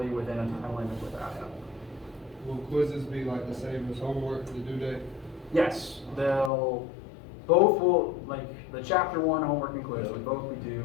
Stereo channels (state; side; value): drops out; right; at 6.5 s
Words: within a time limit without help? Will quizzes be like the same as homework, the due date? Yes, both will, like the chapter 1 homework and quiz would both be